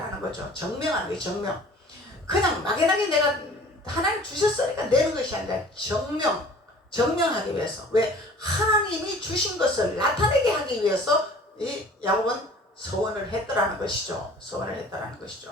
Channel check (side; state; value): both; normal; correlation 0.48